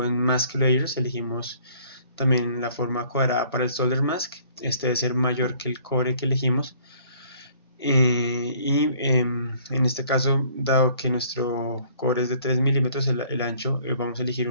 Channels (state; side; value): inverted; both; correlation -0.58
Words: en Mask Layers elegimos también la forma cuadrada para el solder mask. Este debe ser mayor que el cobre que elegimos. En este caso, dado que nuestro cobre es de 3 milímetros el ancho, vamos a elegir